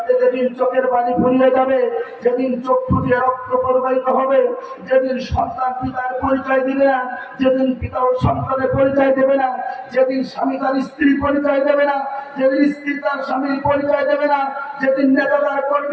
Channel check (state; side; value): identical; both; correlation 1.00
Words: যেদিন চোখের পানি ফুরিয়ে যাবে, যেদিন চক্ষু দিয়ে রক্ত প্রবাহিত হবে, যেদিন সন্তান পিতার পরিচয় দিবে না, যেদিন পিতা ও সন্তানের পরিচয় দেবে না, যেদিন স্বামী তার স্ত্রীর পরিচয় দেবে না, যেদিন স্ত্রী তার স্বামীর পরিচয় দেবে না, যেদিন নেতা তার